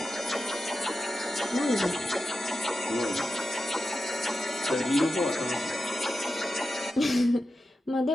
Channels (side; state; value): both; normal; correlation 0.91